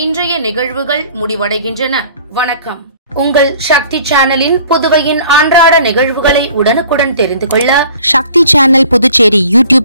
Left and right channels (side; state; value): both; inverted; correlation -0.51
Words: இன்றைய நிகழ்வுகள் முடிவடைகின்றன. வணக்கம். உங்கள் சக்தி சேனலின் புதுவையின் அன்றாட நிகழ்வுகளை உடனுக்குடன் தெரிந்து கொள்ள சக்தி சேனல் புதுச்சேரி